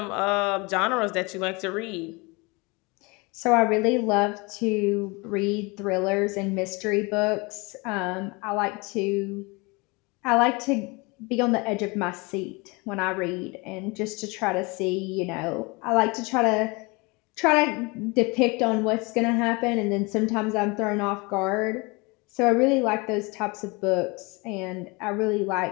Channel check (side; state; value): right; quieter; 27.0 dB